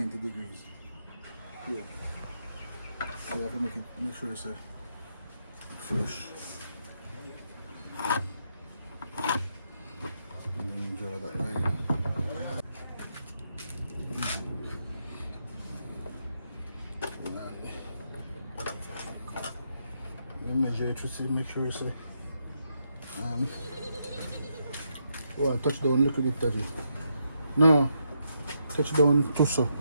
degrees. Here. So you have to make sure it's flush. And then you draw that line. You measure it to see, make sure it's touch down a little bit, Daddy. No, touch down too so.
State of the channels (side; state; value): both; inverted; correlation -0.80